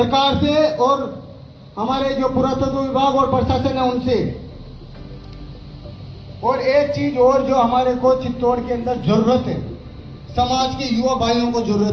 से और हमारे जो पुरातत्व विभाग और प्रशासन है उनसे। और एक चीज और जो हमारे को चित्तौड़ के अंदर जरूरत है, समाज के युवा भाइयों को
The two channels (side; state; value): both; identical; correlation 1.00